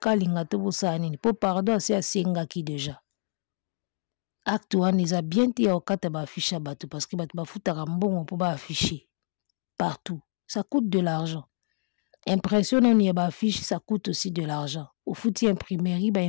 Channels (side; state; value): right; silent; digital silence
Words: te bosala nini po pardon si asengaki déjà acte wana eza bien te ya okata ba affiche ya bato parce que bato bafutaka mbongo po ba afficher partout ça coûte de l'argent. Impression on y a ba affiche ça coûte aussi de l'argent. Au fouti imprimerie ba